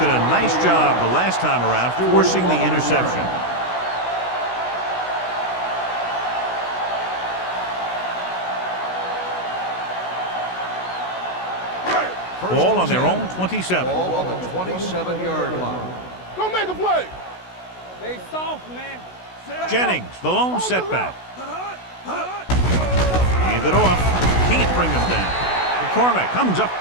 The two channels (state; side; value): late; right; 16 ms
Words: a nice job the last time around forcing the interception. Ball on their own 27. Ball on the 27-yard line. Go make a play. They soft, man. Jennings, the lone setback. Hand it off. Can't bring them down. McCormick comes up